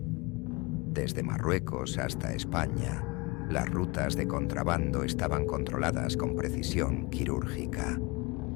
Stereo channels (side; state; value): right; quieter; 26.4 dB